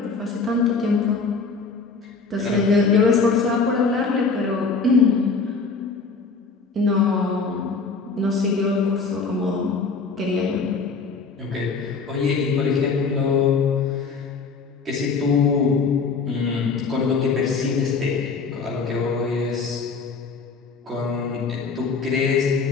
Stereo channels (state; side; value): quieter; right; 4.7 dB